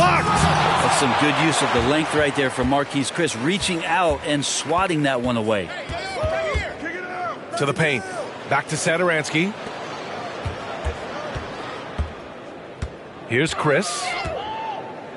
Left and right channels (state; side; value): identical; both; correlation 1.00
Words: That's some good use of the length right there from Marquise Chris, reaching out and swatting that one away. To the paint. Back to Satoransky. Here's Chris.